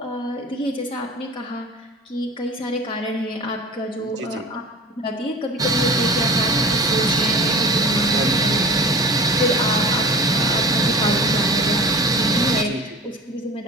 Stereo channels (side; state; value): both; normal; correlation 0.38